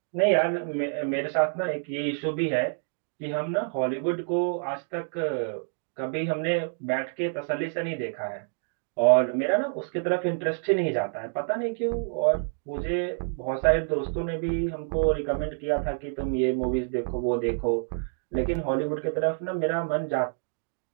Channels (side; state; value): left; silent; digital silence